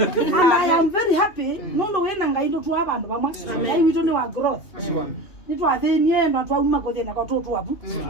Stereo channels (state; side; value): late; right; 2.8 ms